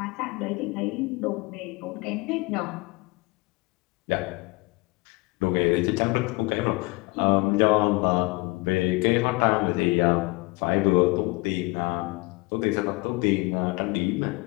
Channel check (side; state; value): right; quieter; 24.8 dB